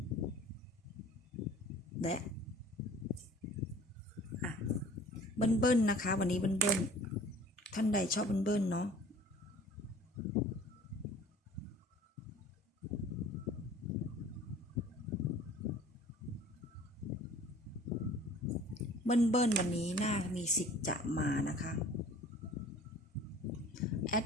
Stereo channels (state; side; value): normal; both; correlation 0.48